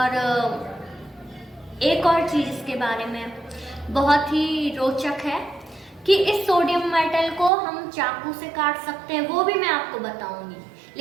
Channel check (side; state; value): left; drops out; at 7.5 s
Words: एक और चीज़ इसके बारे में बहुत ही रोचक है कि इस सोडियम मेटल को हम चाकू से काट सकते हैं, वो भी मैं आपको बताऊंगी।